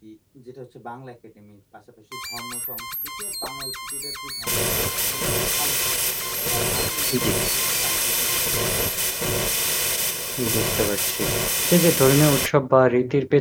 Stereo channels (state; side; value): identical; both; correlation 1.00